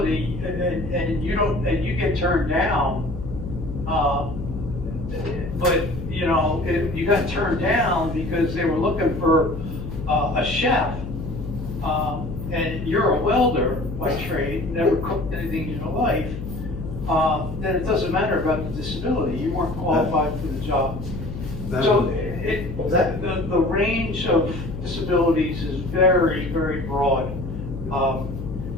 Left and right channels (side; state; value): left; noise; hum, 8 dB below the sound